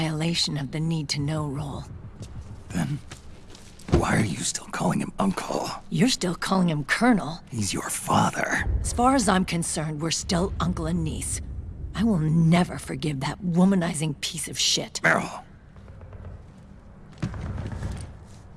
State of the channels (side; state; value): both; identical; correlation 1.00